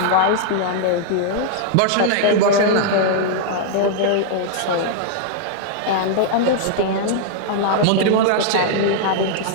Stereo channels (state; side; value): different; both; correlation -0.01